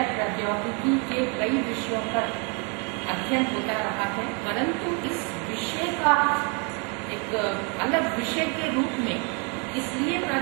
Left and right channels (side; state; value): left; quieter; 34.6 dB